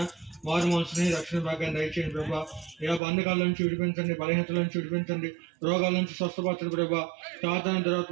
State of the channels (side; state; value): left; drops out; at 3.0 s